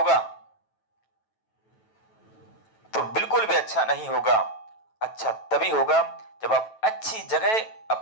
तो बिल्कुल भी अच्छा नहीं होगा। अच्छा तभी होगा जब आप अच्छी जगह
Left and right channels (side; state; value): right; late; 9.1 ms